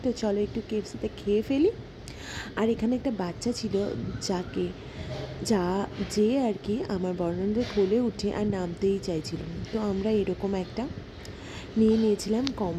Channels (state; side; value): identical; both; correlation 1.00